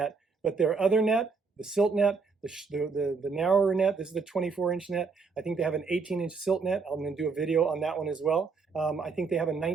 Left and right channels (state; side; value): quieter; left; 4.8 dB